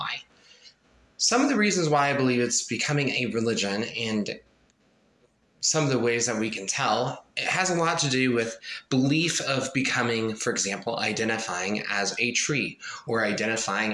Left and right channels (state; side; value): identical; both; correlation 1.00